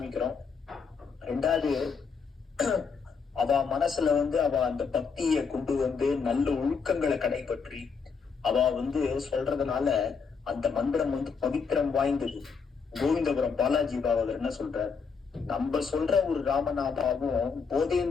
ரெண்டாவது, அவ மனசுல வந்து அவ அந்த பக்தியை கொண்டு வந்து நல்ல ஒழுக்கங்களை கடைபற்றி அவ வந்து சொல்றதுனால அந்த மந்திரம் வந்து பவித்திரம் வாய்ந்தது. கோவிந்தபுரம் பாலாஜி பாகவதர் என்ன சொல்றார்? நம்ம சொல்ற ஒரு ராமநாமாவும்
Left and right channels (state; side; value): quieter; right; 5.5 dB